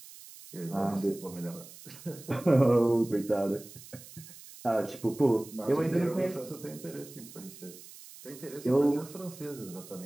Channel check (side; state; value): right; noise; hiss, 17 dB below the sound